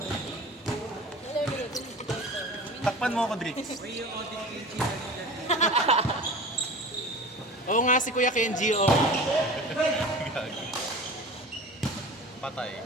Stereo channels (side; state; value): both; normal; correlation 0.36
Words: Takpan mo ako, Drix. Oo nga, si Kuya Kenji, oh. Patay.